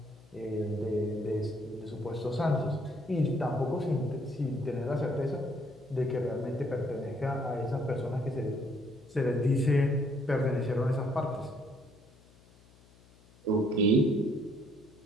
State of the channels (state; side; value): noise; left; hum, 27 dB below the sound